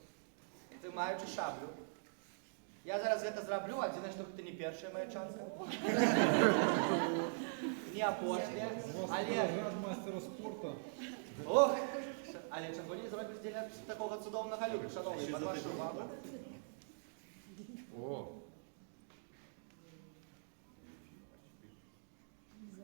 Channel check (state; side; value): silent; left; digital silence